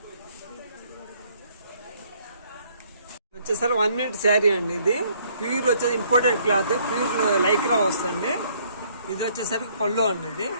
వచ్చేసరి 1 minute శారీ అండి. ఇది ప్యూర్ వచ్చేసి ఇంపోర్టెడ్ క్లాత్, ప్యూర్ లైక్రా వస్తుంది. ఇది వచ్చేసరికి పళ్ళు అండి.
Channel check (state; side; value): inverted; both; correlation -0.64